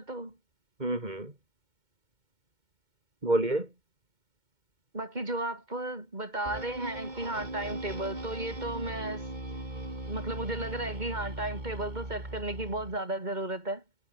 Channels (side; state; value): left; late; 2.2 ms